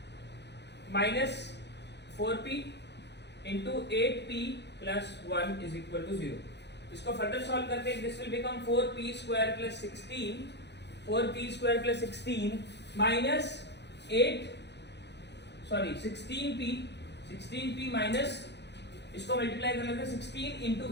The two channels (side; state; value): right; late; 0.50 ms